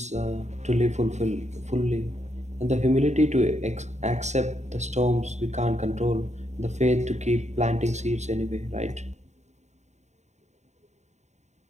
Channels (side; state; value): left; late; 0.33 ms